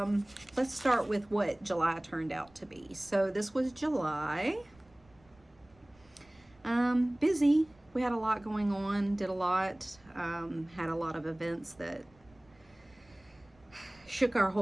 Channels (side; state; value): right; noise; rumble, 29 dB below the sound